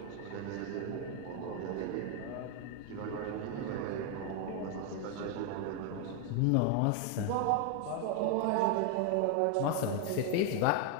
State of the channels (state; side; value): different; both; correlation 0.01